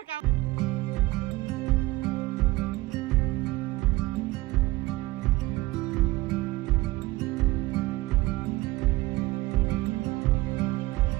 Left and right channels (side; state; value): left; quieter; 19.6 dB